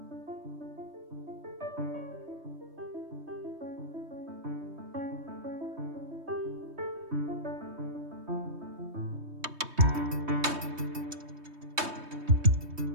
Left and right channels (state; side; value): late; left; 3.2 ms